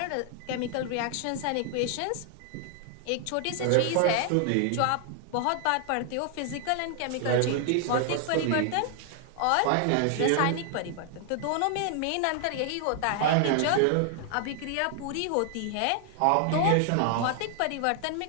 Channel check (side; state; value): both; different; correlation 0.00